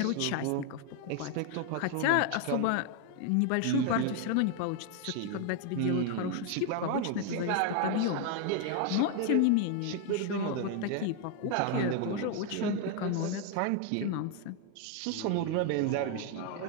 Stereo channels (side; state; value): both; different; correlation 0.01